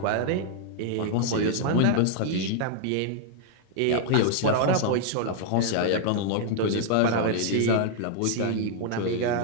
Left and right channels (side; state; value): both; different; correlation -0.01